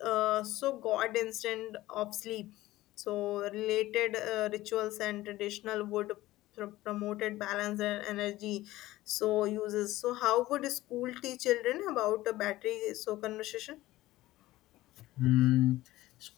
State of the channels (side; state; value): right; quieter; 16.9 dB